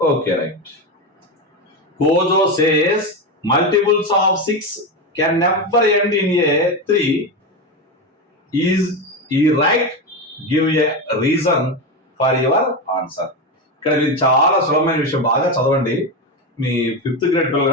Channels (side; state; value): both; normal; correlation 0.15